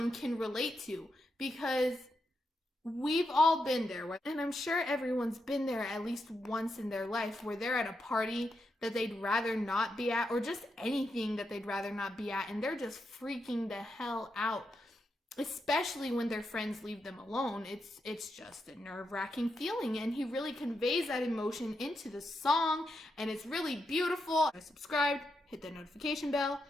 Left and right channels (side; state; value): both; normal; correlation 0.84